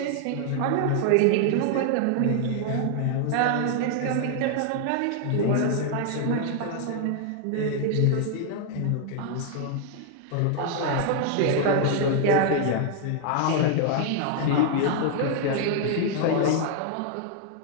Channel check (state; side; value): different; both; correlation 0.00